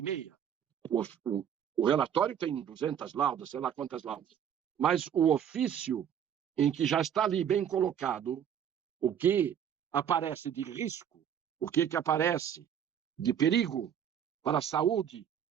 meia. O relatório tem 200 laudas, sei lá quantas laudas. Mas o ofício em que já está ali bem colocado o que aparece de risco, o que aparece de perigo para a saúde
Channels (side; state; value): left; quieter; 9.0 dB